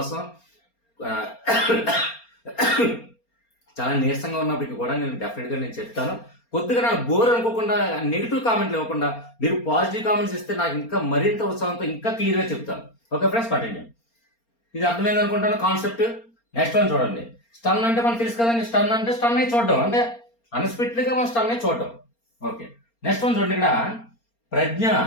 చాలా నీరసంగా ఉన్నప్పటికీ కూడా నేను డెఫినెట్గా నేను చెప్తాను. కొద్దిగా నాకు బోర్ అనుకోకుండా, నెగిటివ్ కామెంట్లు ఇవ్వకుండా మీరు పాజిటివ్ కామెంట్స్ ఇస్తే నాకు ఇంకా మరింత ఉత్సాహంతో ఇంకా క్లియర్గా చెప్తాను. Okay friends, continue. ఇది అర్థమైంది అనుకుంటాను కాన్సెప్ట్. నెక్స్ట్ వన్ చూడండి. స్టన్ అంటే మనకు తెలుసు కదండి. స్టన్ అంటే స్టన్ అయి చూడడం, అంటే అన్ఎక్స్పెక్టెడ్గా మనం స్టన్ అయి చూడడం. ఓకే, నెక్స్ట్ వన్ చూడండి. ఇక్కడ ప్రజ్ఞ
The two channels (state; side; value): late; right; 4.3 ms